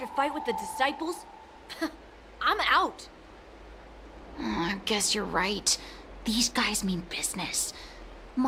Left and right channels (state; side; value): identical; both; correlation 1.00